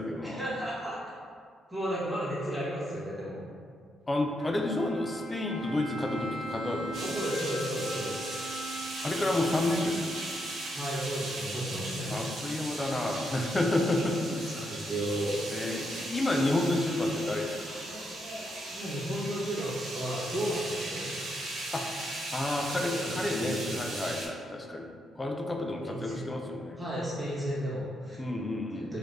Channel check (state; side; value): normal; both; correlation 0.80